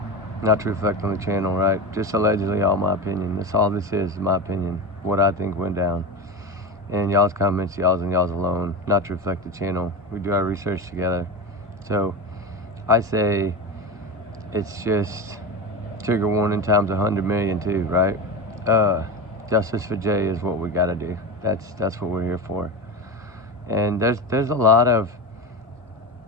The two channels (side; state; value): both; normal; correlation 0.22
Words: Not to reflect on the channel, right? Just allegedly all my opinion. That's all this is my opinion. What I think went down. And y'all's comments, y'all's alone. Not to reflect the channel. We do our research together. So I say it's just trigger warning times 100 million too, right? Justice for Jay is what we gotta do. That's what we're here for. And there's a lot of,